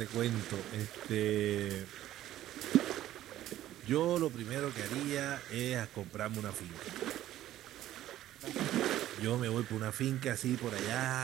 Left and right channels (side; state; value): left; quieter; 13.4 dB